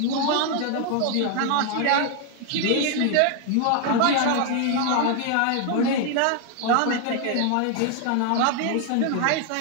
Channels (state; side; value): different; both; correlation 0.00